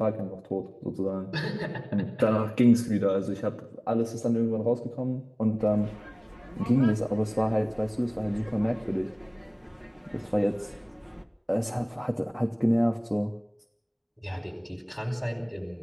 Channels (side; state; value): both; identical; correlation 1.00